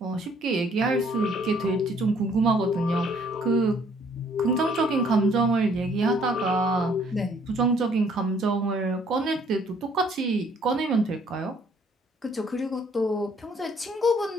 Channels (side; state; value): both; normal; correlation 0.62